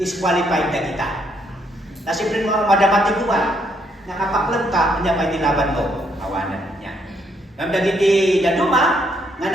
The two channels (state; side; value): normal; both; correlation 0.72